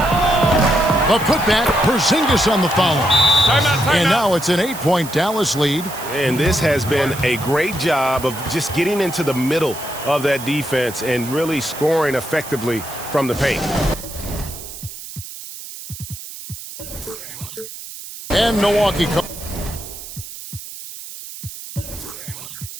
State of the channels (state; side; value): noise; right; hiss, 12 dB below the sound